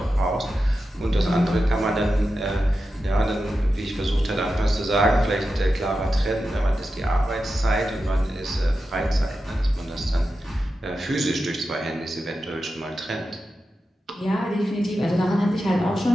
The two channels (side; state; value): both; normal; correlation 0.91